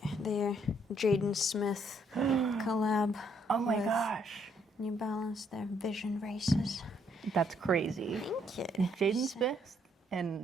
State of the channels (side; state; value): both; normal; correlation 0.70